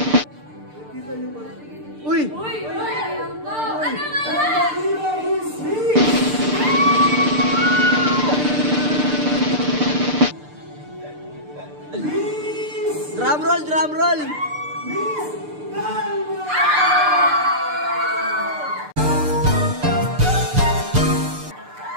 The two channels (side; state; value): left; late; 6.7 ms